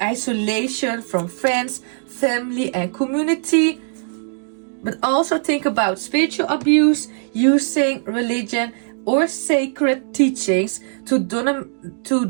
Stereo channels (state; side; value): silent; left; digital silence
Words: from friends, family and community. But also think about spiritual abuse, using religion or sacred teachings to